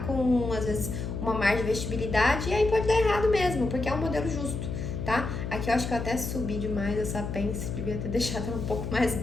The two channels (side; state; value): left; noise; hum, 4 dB below the sound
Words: com, às vezes, uma margem de vestibilidade e aí pode dar errado mesmo, porque é um modelo justo, tá? Aqui eu acho que eu até subi demais essa pence, devia ter deixado ela um pouco mais